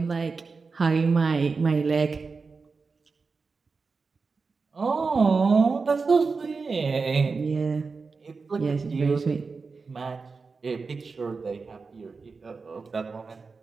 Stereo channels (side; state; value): left; quieter; 4.5 dB